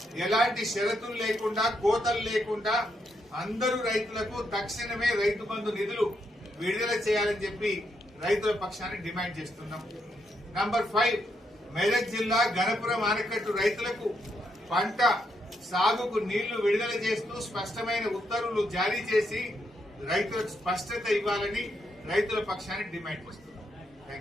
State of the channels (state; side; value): normal; both; correlation 0.79